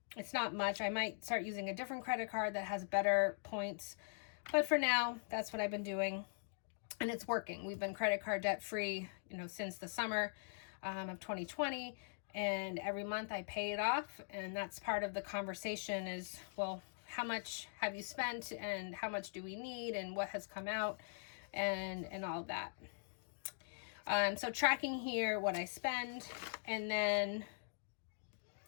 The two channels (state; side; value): silent; right; digital silence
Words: It's not much. I might start using a different credit card that has better points, but for now, that's what I've been doing. And it's working. We've been credit card debt free, since the summer of 2020. And every month I pay it off. And that's part of the conversation is, well, how much have you spent and how much do we need and what has come out and all of that. So tracking here what I spend. And then